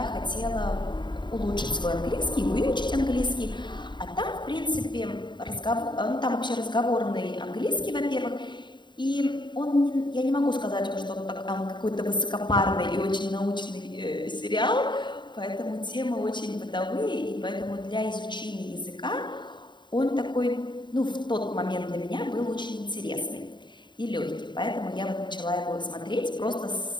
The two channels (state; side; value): late; right; 0.22 ms